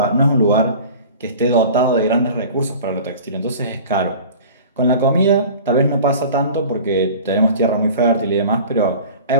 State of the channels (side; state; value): both; inverted; correlation -0.41